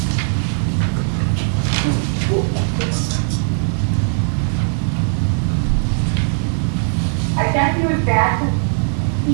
I guess he was bad to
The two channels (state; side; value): silent; left; digital silence